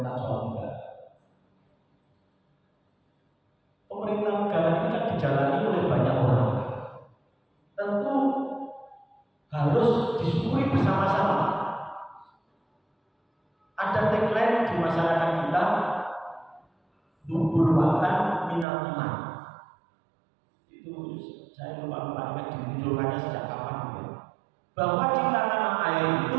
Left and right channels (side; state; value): left; drops out; at 18.7 s